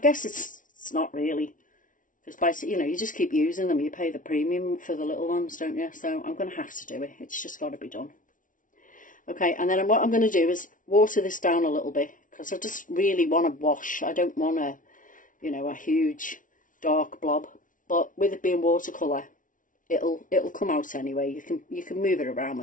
it's not really. Because, you know, you just keep using them. You pay the premium for the little ones, don't you? So I'm going to have to do it. It's just got to be done. Okay, and then what I'm going to do is water this down a little bit. Because I just really want to wash. I don't want a, you know, a huge dark blob. But with it being watercolour, it'll come out anyway. You can move it around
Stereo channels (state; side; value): late; right; 0.38 ms